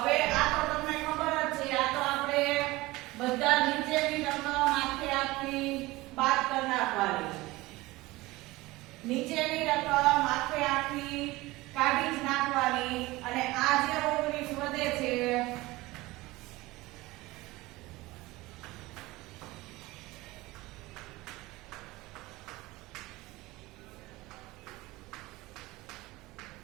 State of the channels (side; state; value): left; quieter; 20.2 dB